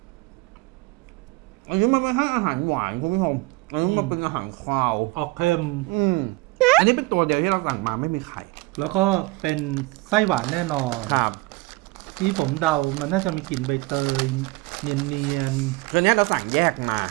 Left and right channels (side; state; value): left; quieter; 22.7 dB